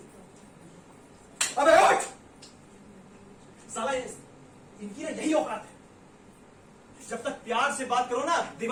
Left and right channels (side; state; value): both; identical; correlation 1.00